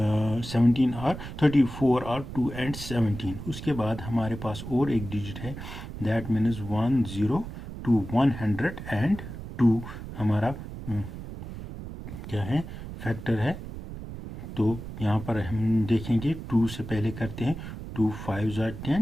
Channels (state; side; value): noise; right; rumble, 10 dB below the sound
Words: 17 are 34 are 2 and 17। उसके बाद हमारे पास और एक डिजिट है, दैट मीन्स 102, 102 हमारा क्या है? फैक्टर है। तो यहाँ पर हम देखेंगे 2 से पहले करते हैं 2 5 ज़ा